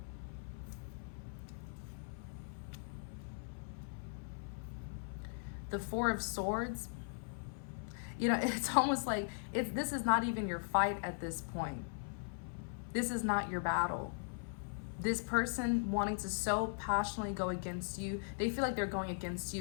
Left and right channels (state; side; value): silent; right; 52 dB below the other